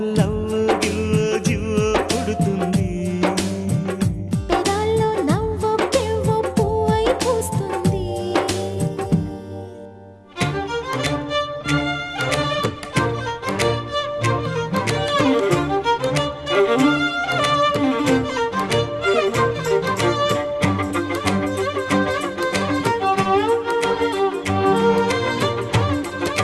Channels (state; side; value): identical; both; correlation 1.00